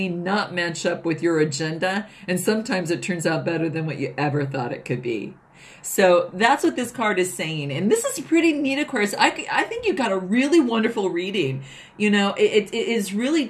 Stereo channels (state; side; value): identical; both; correlation 1.00